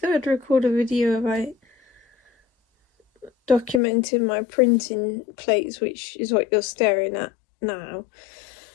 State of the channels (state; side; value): drops out; right; at 3.8 s